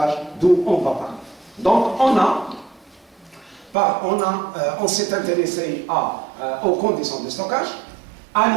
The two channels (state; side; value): drops out; left; at 3.8 s